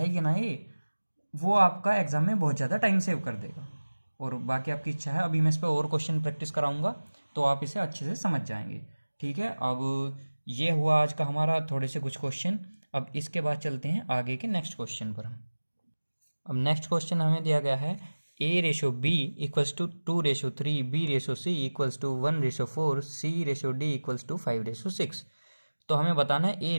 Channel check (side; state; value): both; inverted; correlation -1.00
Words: ना ये, वो आपका एग्ज़ाम में बहुत ज़्यादा टाइम सेव कर देगा। और बाकी आपकी इच्छा है, अभी मैं इस पर और क्वेश्चन प्रैक्टिस कराऊंगा तो आप इसे अच्छे से समझ जाएंगे, ठीक है। अब ये हुआ आज का हमारा थोड़े से कुछ क्वेश्चन। अब इसके बाद चलते हैं आगे के नेक्स्ट क्वेश्चन पर हम। अब नेक्स्ट क्वेश्चन हमें दिया गया है A/B = 2/3, B/C = 1/4, C/D = 5/6। तो हमें बताना है